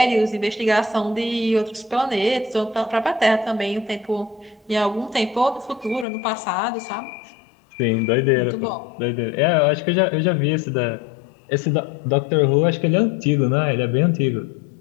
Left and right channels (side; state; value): right; drops out; at 6.1 s